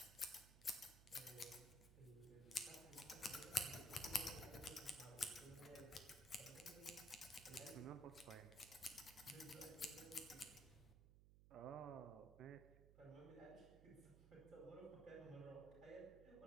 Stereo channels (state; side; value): noise; right; hum, 16 dB below the sound